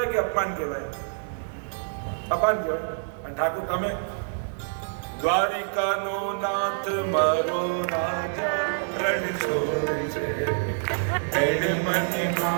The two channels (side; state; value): left; silent; digital silence